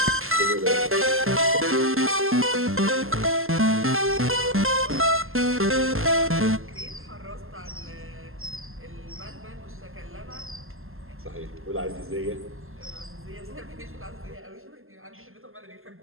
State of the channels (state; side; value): late; left; 0.61 ms